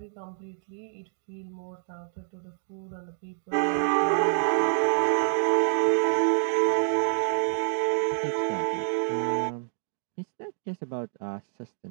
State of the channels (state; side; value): silent; left; digital silence